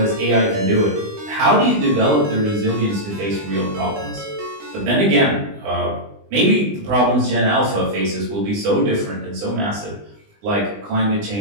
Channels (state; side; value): late; left; 20 ms